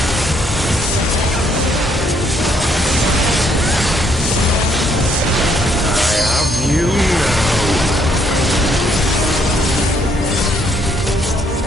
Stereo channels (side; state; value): both; normal; correlation 0.69